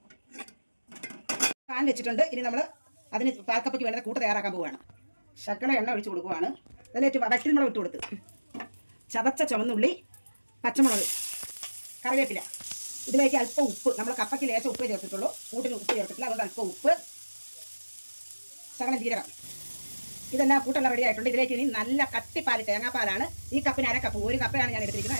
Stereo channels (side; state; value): both; inverted; correlation -1.00